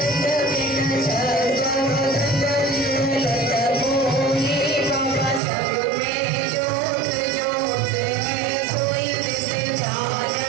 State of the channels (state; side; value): drops out; left; at 5.4 s